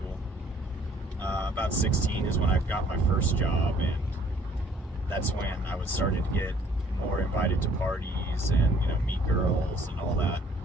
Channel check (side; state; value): both; normal; correlation 0.59